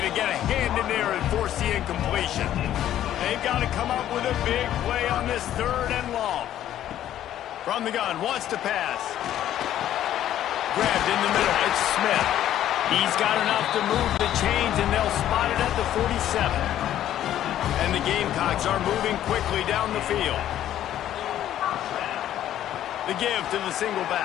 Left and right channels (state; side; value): quieter; right; 11.8 dB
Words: get a hand in there and force the incompletion? They've got to come up with a big play on this 3rd and long. From the gun, wants to pass. Grabbed in the middle, it's Smith. He's got enough to move the chains, and they'll spot it at the 47. And the Gamecocks are moving quickly down the field. The give to the single